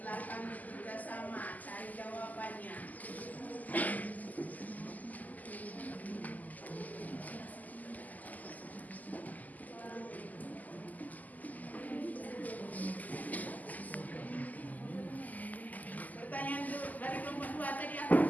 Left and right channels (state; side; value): late; right; 0.080 ms